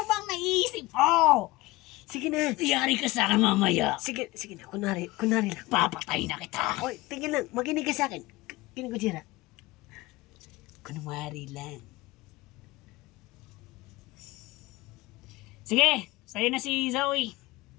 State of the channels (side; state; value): right; quieter; 20.0 dB